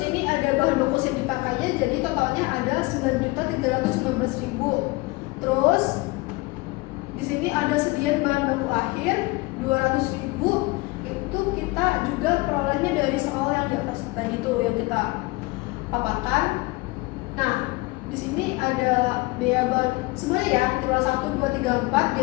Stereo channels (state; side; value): quieter; right; 23.5 dB